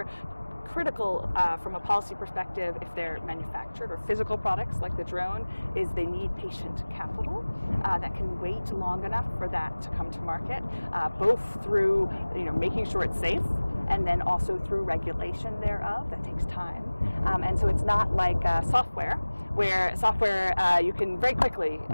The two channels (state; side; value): inverted; both; correlation -1.00